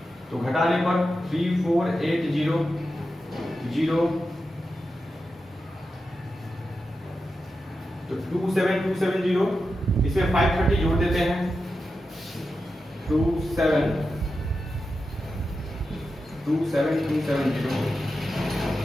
तो घटाने पर 3480 तो 27270, इसमें 530 जोड़ देते हैं,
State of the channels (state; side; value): normal; both; correlation 0.90